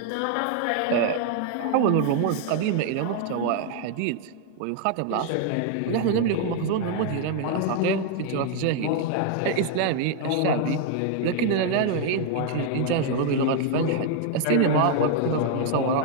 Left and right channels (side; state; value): both; different; correlation 0.00